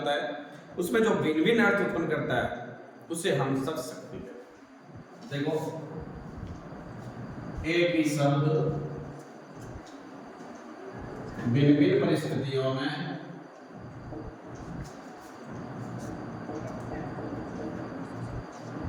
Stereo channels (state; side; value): identical; both; correlation 1.00